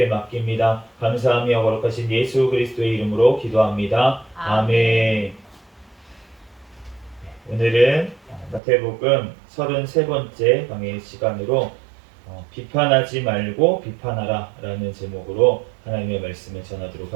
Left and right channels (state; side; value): drops out; left; at 8.6 s